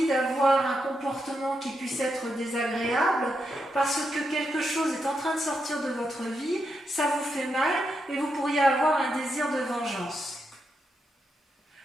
d'avoir un comportement qui puisse être désagréable, parce que quelque chose est en train de sortir de votre vie, ça vous fait mal et vous pourriez avoir un désir de vengeance.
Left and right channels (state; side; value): normal; both; correlation 0.84